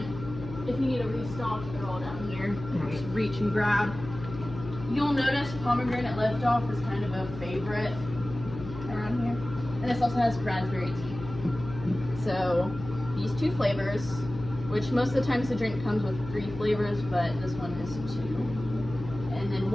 if you need a restock, they're all down here. Just reach and grab. You'll notice pomegranate liftoff is kind of a favorite around here. And this also has raspberry tea. So these two flavors, which most of the times the drink comes with 3 flavors, but this one is 2. And then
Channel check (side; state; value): left; noise; hum, 10 dB below the sound